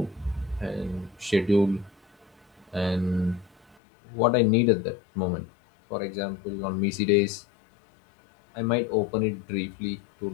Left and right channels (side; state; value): right; drops out; at 3.8 s